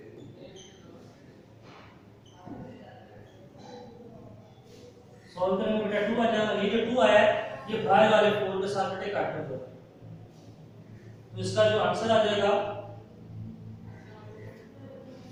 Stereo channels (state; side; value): identical; both; correlation 1.00